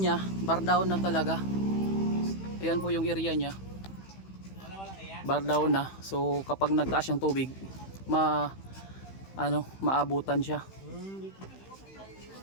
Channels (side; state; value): right; late; 15 ms